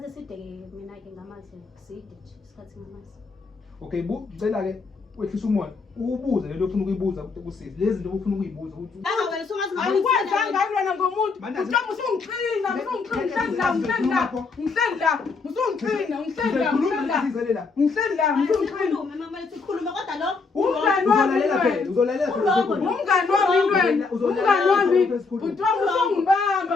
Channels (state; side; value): quieter; right; 4.5 dB